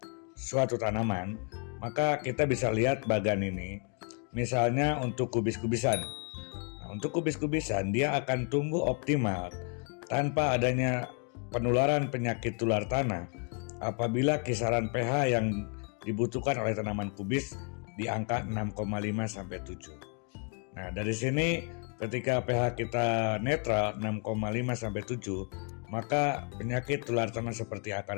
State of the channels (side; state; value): right; quieter; 38.3 dB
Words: suatu tanaman, maka kita bisa lihat bagian ini. Misalnya untuk kubis-kubisan. Nah, untuk kubis-kubisan dia akan tumbuh optimal tanpa adanya penularan penyakit tular tanah apabila kisaran pH yang dibutuhkan oleh tanaman kubis di angka 6,5 sampai 7. Nah, dari sini ketika pH kita netral 6,5 sampai 7, maka penyakit tular tanah seperti